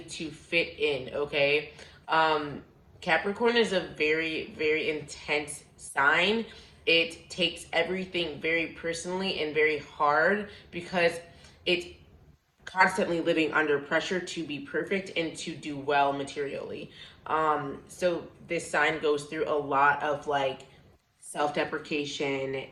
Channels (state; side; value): identical; both; correlation 1.00